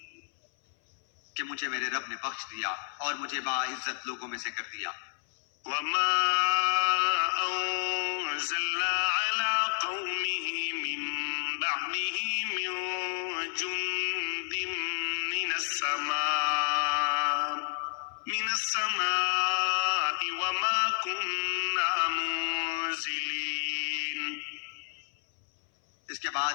کہ مجھے میرے رب نے بخش دیا اور مجھے باعزت لوگوں میں سے کر دیا. وما أنزلنا على قومه من بعده من جند من السماء وما كنا منزلين. اس کے بعد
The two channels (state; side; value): silent; right; 57 dB below the other